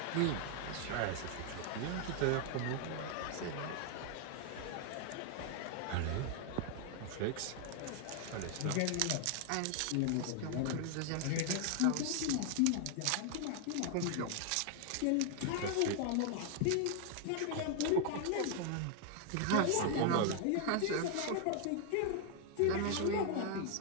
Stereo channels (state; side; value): different; both; correlation 0.00